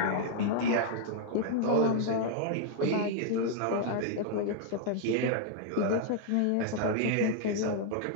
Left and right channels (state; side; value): different; both; correlation 0.00